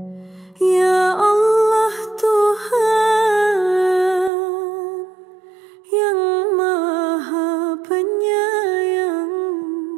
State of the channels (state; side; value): drops out; left; at 4.3 s